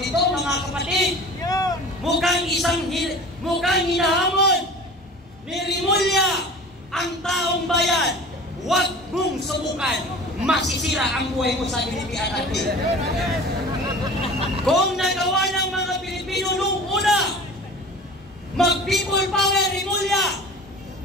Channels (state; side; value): normal; both; correlation 0.40